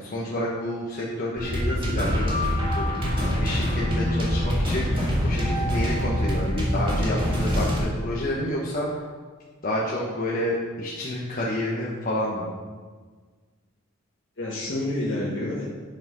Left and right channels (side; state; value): both; normal; correlation 0.63